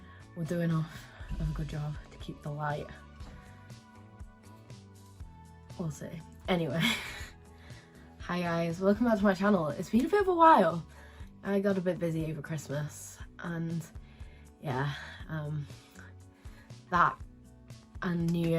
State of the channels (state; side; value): identical; both; correlation 1.00